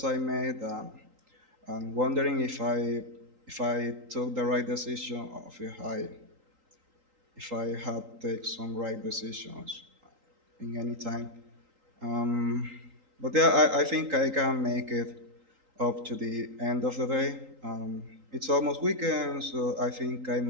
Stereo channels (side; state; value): left; late; 3.8 ms